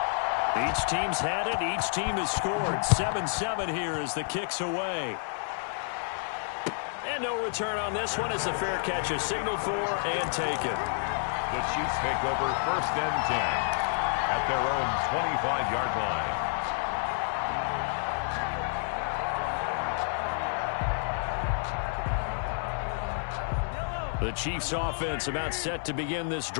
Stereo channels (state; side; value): silent; right; 58 dB below the other